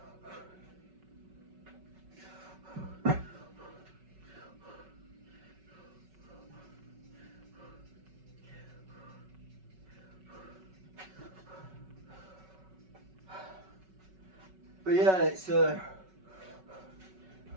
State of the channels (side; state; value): left; late; 5.3 ms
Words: But yeah, it's.